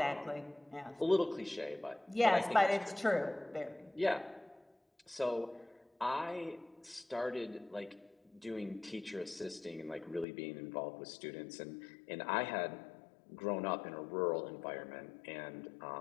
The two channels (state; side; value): drops out; right; at 10.2 s